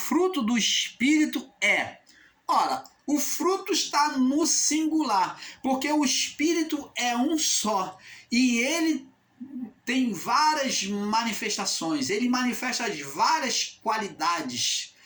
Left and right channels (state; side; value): identical; both; correlation 1.00